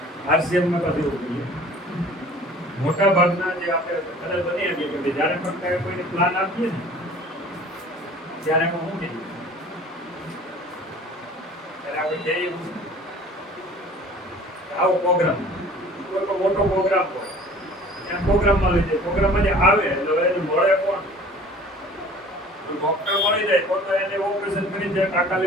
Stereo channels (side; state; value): both; normal; correlation 0.47